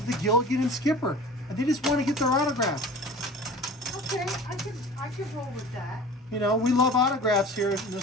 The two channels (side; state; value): both; normal; correlation 0.41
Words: the Gilligan and Skipper. And they just want to get their autograph. Okay, I could roll with that. You know, we love autographs here in